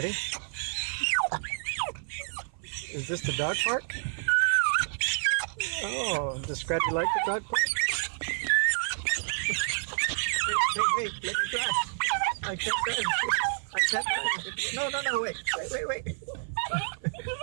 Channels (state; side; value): silent; left; 55 dB below the other